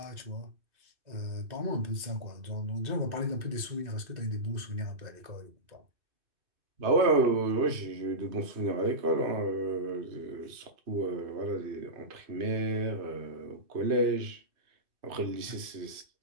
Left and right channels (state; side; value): late; left; 2.6 ms